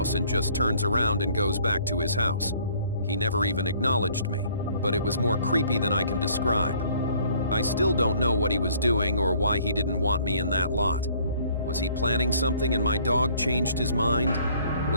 and just turns around and goes back to his house. He never even acknowledged me, but it was more creepy than I can describe. I still don't know what he was doing or why he didn't want me in that lot. Was he planning something and my dog changed his mind?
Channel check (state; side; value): inverted; both; correlation -0.59